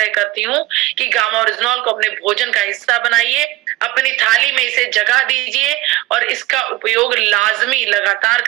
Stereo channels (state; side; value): quieter; left; 18.0 dB